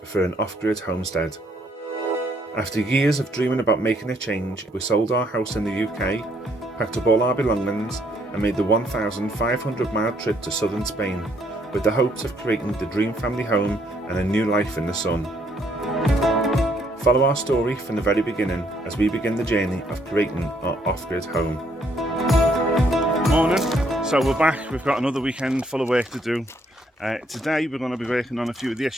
for an off-grid homestead. After years of dreaming about making a change, we sold our house in the UK, packed up all our belongings and made the 1,500-mile trip to southern Spain with the hopes of creating the dream family home and a new life in the sun. Follow our story from the very beginning as we begin the journey of creating our off-grid home. Morning, so we're back. We've got another weekend full of work to do. Today we're going to be working on a few of the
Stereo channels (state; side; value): normal; both; correlation 0.69